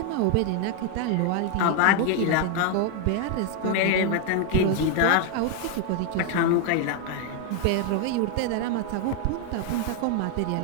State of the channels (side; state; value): both; different; correlation 0.01